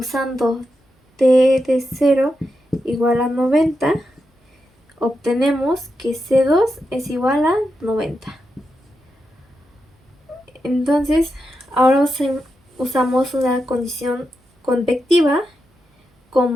t de 0 igual a 90, obtenemos que C2 es igual a 90. Entonces, ahora usamos una condición convectiva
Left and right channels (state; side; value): normal; both; correlation 0.87